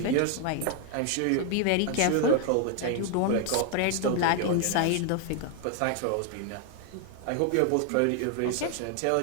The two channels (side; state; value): both; different; correlation 0.00